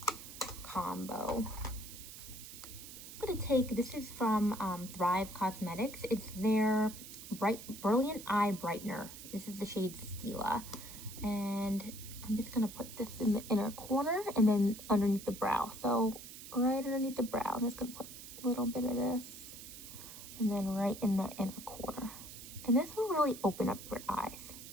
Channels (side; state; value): right; noise; hiss, 13 dB below the sound